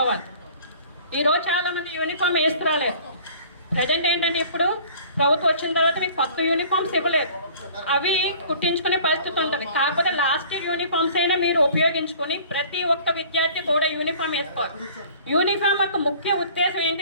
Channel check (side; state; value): both; inverted; correlation -0.49